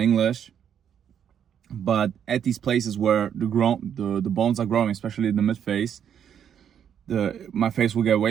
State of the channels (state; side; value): quieter; left; 8.7 dB